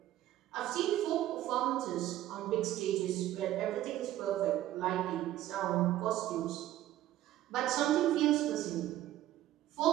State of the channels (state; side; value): quieter; left; 13.8 dB